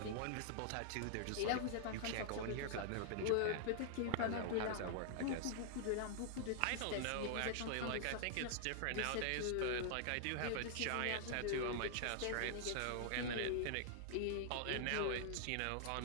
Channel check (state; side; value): different; both; correlation -0.01